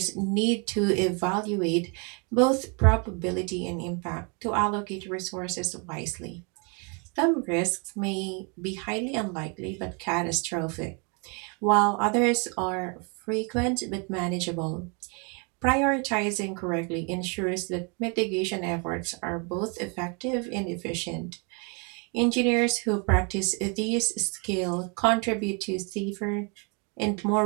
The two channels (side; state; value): left; quieter; 34.5 dB